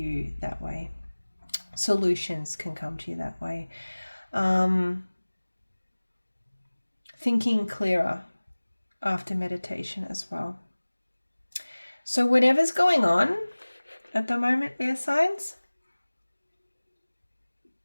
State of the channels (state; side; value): inverted; both; correlation -1.00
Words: that way. Solutions can come to you that way. Thinking clearer after meditation as well. So whatever's going on at the moment, air signs,